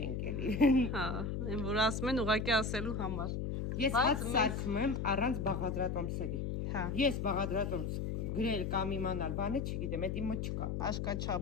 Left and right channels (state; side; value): noise; left; hum, 2 dB below the sound